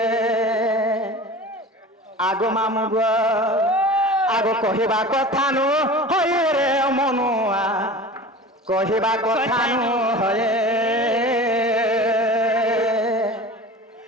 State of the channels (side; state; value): both; normal; correlation 0.36